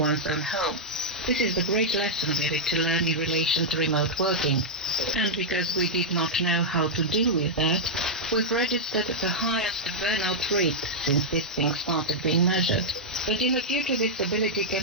own home. This is the great lesson we need to learn in relation to remote working. And because we did not know how to deal with that, we've registered the highest burnout rate since this thing started being measured. But in the future, this ability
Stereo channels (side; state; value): both; normal; correlation -0.05